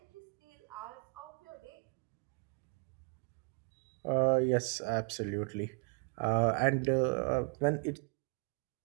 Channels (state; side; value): quieter; left; 36.1 dB